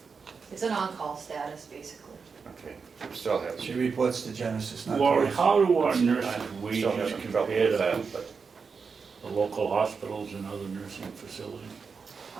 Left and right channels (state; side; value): quieter; left; 5.3 dB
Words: It's an on-call status, basically. Okay, still have. She reports to Genesis, not Lori, to us. how do our nurses' Still wages having trouble compare with to that, but the local hospitals and other nursing facilities?